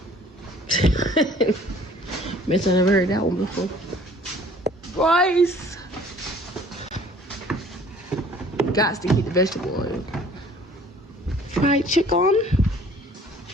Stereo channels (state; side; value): normal; both; correlation 0.53